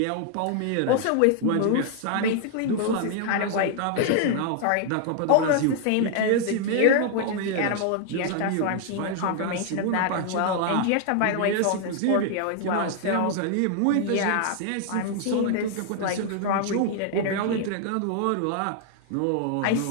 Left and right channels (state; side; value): different; both; correlation 0.00